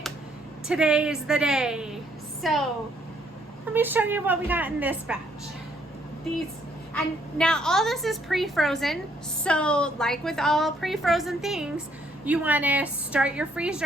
Today is the day. So let me show you what we got in this batch. And now all this is pre-frozen. So like with all pre-frozen things, you want to start your freeze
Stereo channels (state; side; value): normal; both; correlation 0.68